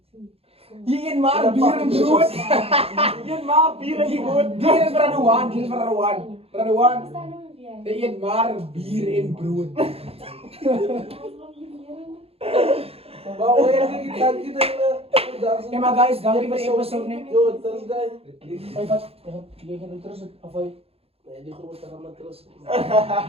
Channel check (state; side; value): late; left; 0.28 ms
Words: Hier een maar bier en brood. Een maal bier en brood. Hier is Radwan, hier is Radwan. Radwan. Een maar bier en brood. Maar hoe heb je dat je Hey maar guys, dankie vir die episode nie. Yo, dat is guy. Hey wat? Jy gaan terug of hy? Nee, die grote gaan maar terug.